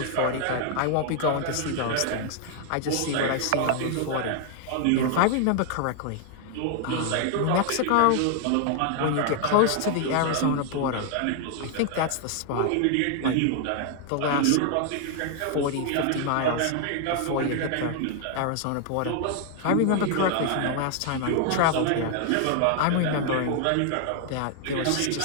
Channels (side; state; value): both; different; correlation 0.00